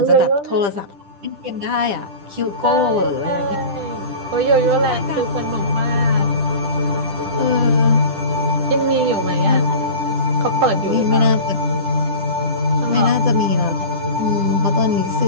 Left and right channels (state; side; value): late; left; 10 ms